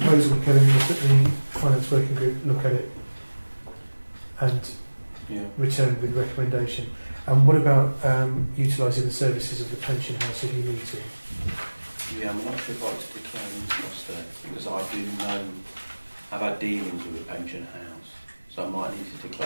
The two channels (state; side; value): inverted; both; correlation -1.00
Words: Kevin, was that the finance working group look at it and return with recommendation. And what about utilising the services of the pension house if you need to? Yeah, I'm not sure if I'd like to declare an interest there, because I do know I've had dealings with the pension house, so I might need to